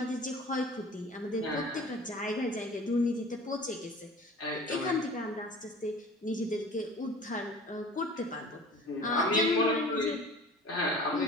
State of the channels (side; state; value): both; normal; correlation 0.43